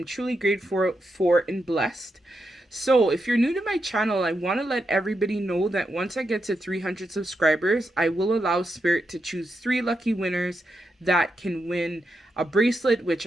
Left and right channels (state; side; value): normal; both; correlation 0.85